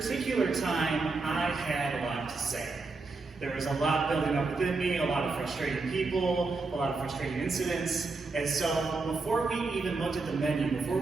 time, I had a lot to say. There was a lot building up within me, a lot of frustrating people, a lot of frustrating incidents. And so before we even looked at the menu, before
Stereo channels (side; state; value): left; quieter; 3.8 dB